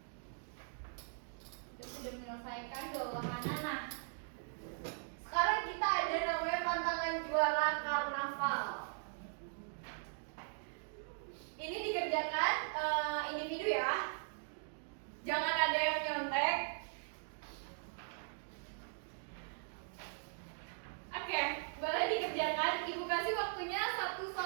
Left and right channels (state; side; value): silent; left; digital silence